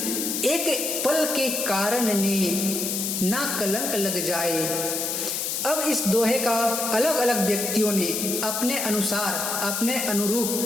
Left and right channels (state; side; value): noise; left; hiss, 1 dB below the sound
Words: एक पल के कारण ने ना कलंक लग जाए। अब इस दोहे का अलग अलग व्यक्तियों ने अपने अनुसार, अपने